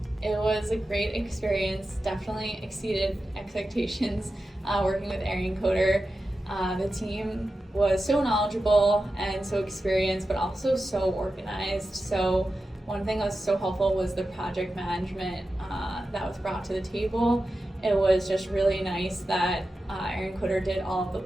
It was a great experience, definitely exceeded expectations working with Arionkoder. The team was so knowledgeable and so experienced, but also so organized. So one thing that was so helpful was the project management that was brought to the table. It was just really nice that Arionkoder did all of the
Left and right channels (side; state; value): both; normal; correlation 0.92